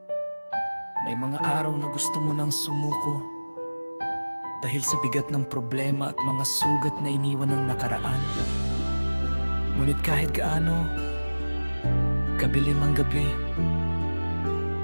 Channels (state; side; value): inverted; both; correlation -1.00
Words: May mga araw na gusto mo nang sumuko dahil sa bigat ng problema at mga sugat na iniwan ng nakaraan. Ngunit kahit gaano kabilim ang gabi,